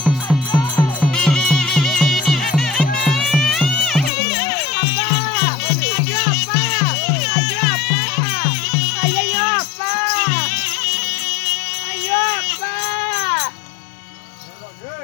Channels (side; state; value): right; drops out; at 4.1 s